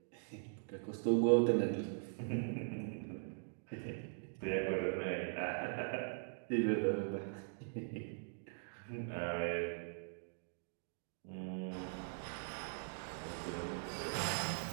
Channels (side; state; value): left; silent; digital silence